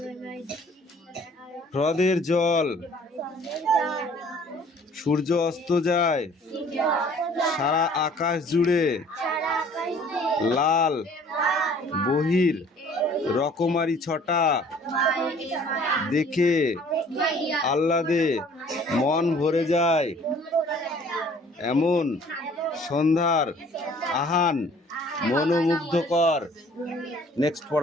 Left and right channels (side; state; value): both; normal; correlation 0.54